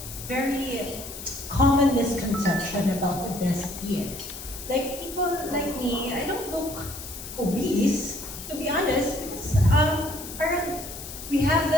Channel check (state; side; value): noise; left; hiss, 11 dB below the sound